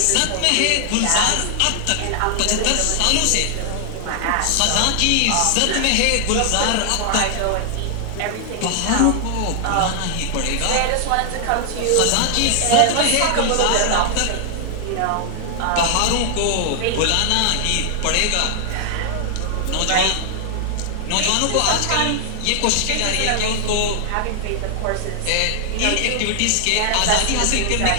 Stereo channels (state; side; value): different; both; correlation 0.00